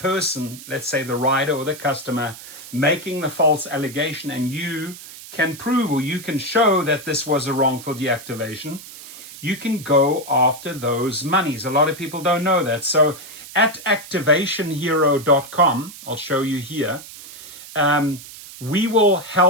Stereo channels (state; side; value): noise; right; hiss, 15 dB below the sound